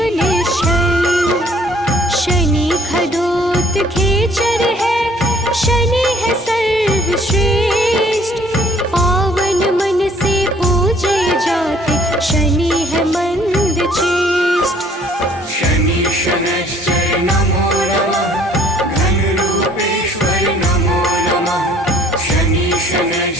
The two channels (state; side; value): normal; both; correlation 0.58